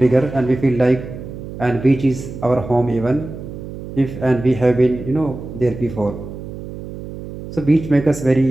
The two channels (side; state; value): right; noise; hum, 11 dB below the sound